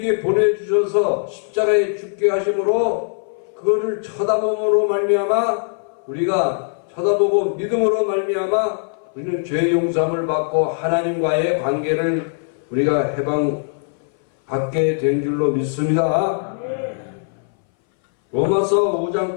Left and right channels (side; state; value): right; silent; 61 dB below the other